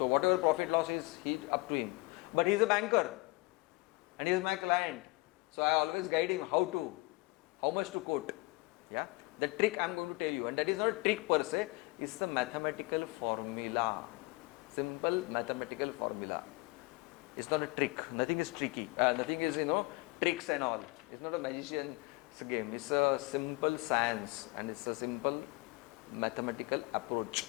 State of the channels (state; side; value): quieter; right; 24.3 dB